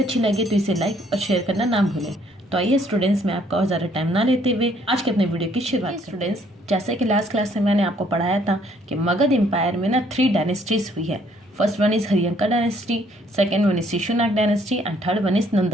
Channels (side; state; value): both; normal; correlation 0.65